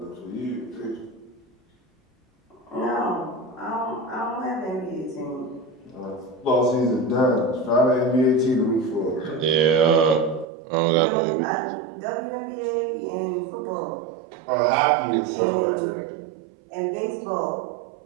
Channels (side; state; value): left; drops out; at 10.5 s